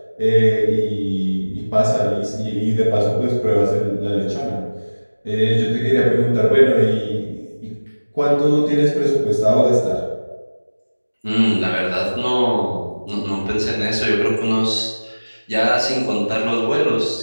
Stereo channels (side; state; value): both; inverted; correlation -1.00